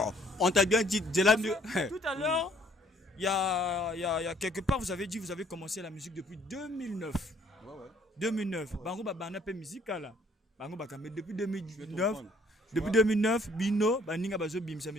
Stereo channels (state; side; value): normal; both; correlation 0.62